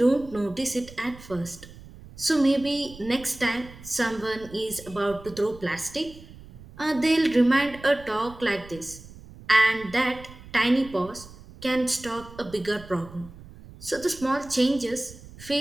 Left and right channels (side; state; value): right; noise; rumble, 18 dB below the sound